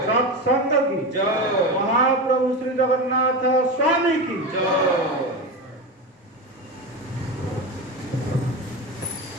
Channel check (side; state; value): both; normal; correlation 0.20